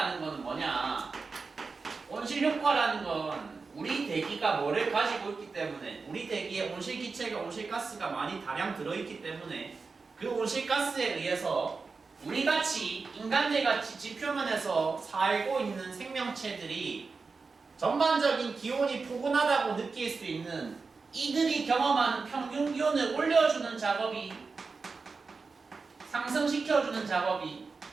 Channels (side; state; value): left; quieter; 4.5 dB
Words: 건 뭐냐? 온실 효과라는 건 우리 대기가 뭐를 가지고 있기 때문에 우리 대기에 온실기체가 온실가스가 많이 다량 들어있기 때문에 그 온실가스에 의해서 우리같이 인간들같이 지표면에서 살고 있는 생명체들이 전반적인 기온이 포근하다고 느낄 수 있는 이들이 경험하는 평균 기온을 올려주는 작업이 상승시켜주는 작업이